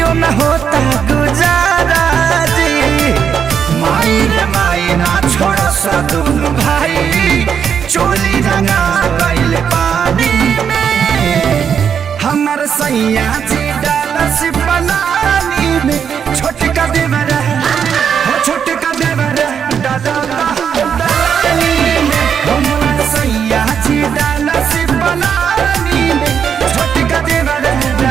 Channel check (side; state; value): left; quieter; 7.5 dB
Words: न होता गुजाराजी। माई रे माई ना छोड़ सा दुनु भाई, चोली रंगा गइल पानी में, हमर सैया जी डालस पलानी में, छोटका देवर हो छोटका देवर दलानी में, हमर सैया जी डालस पलानी में, छोटका देवर